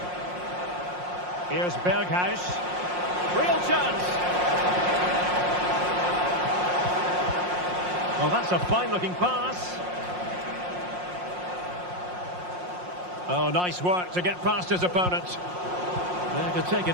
Here's Berghuis. Real chance. Well, that's a fine-looking pass. Oh, nice work to get past his opponent. There to take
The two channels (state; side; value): late; left; 5.6 ms